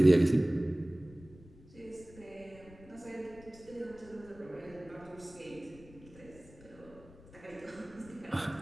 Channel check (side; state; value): left; noise; rumble, 21 dB below the sound